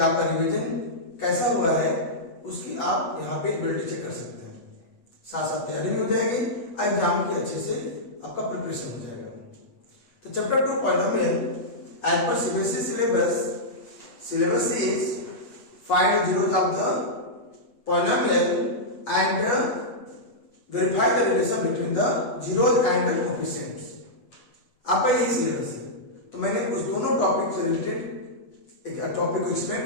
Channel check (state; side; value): late; right; 8.3 ms